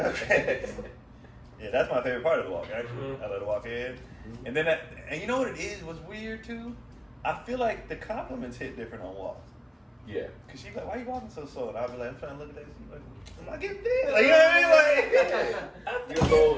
Okay. Yeah, that's my favorite part of the walk. Actually, I let her walk in, and then and you know what it is? What's weird too? I feel like the compliments hit different on walks. Yeah. Cause she's like, "Why are you walking so slow?" And I'll be like, "I'm trying to look at that." She's like, "I'm not getting dead." Like, you know what I mean? Like, you a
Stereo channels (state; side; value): identical; both; correlation 1.00